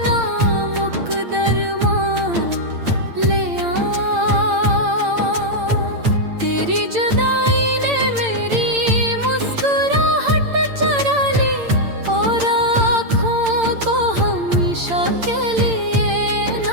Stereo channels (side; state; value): left; late; 8.8 ms